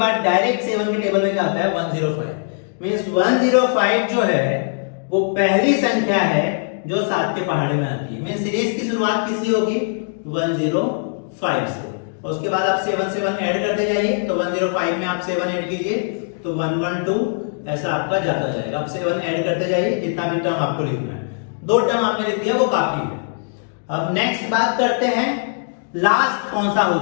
डायरेक्ट 7 के टेबल में क्या आता है 105। मींस 105 जो है वो पहली संख्या है जो 7 के पहाड़े में आती है। मींस सीरीज की शुरुआत किससे होगी 105 से, और उसके बाद आप 7 7 ऐड करते जाइए। तो 105 में आप 7 ऐड कीजिए तो 112, ऐसा आपका जाता जाएगा। आप 7 ऐड करते जाइए, जितना भी टर्म आपको लिखना है। 2 टर्म आपने लिख दिया वो काफी है। अब नेक्स्ट बात करते हैं लास्ट कौन सा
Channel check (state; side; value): silent; right; digital silence